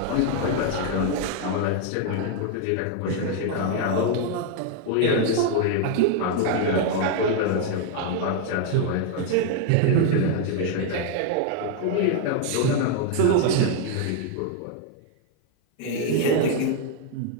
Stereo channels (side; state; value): both; different; correlation 0.00